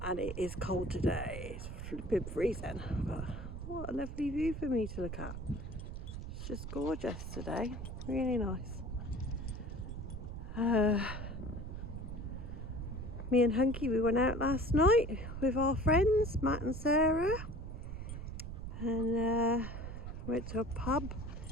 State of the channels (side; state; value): right; noise; rumble, 7 dB below the sound